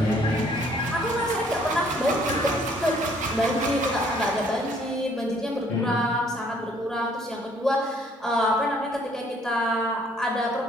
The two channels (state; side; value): normal; both; correlation 0.62